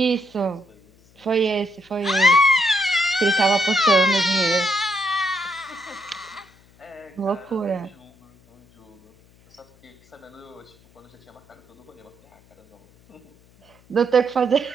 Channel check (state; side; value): noise; left; hum, 30 dB below the sound